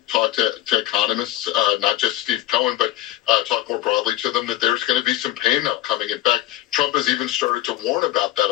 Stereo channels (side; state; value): right; quieter; 14.8 dB